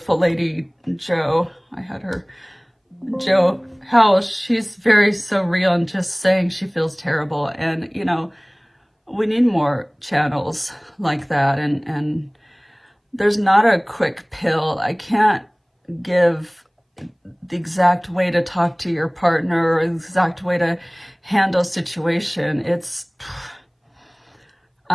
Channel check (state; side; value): identical; both; correlation 1.00